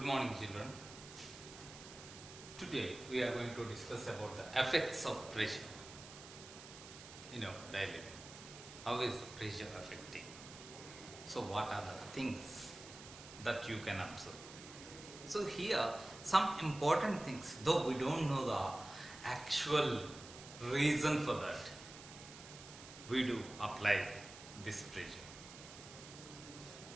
morning, children. Today we are going to discuss about the effects of pressure in our daily life. How is the pressure affecting? So, what are the things that you can observe? So, here some important things, though we don't know the actual reason for that, we do apply this pressure.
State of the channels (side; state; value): right; noise; hiss, 15 dB below the sound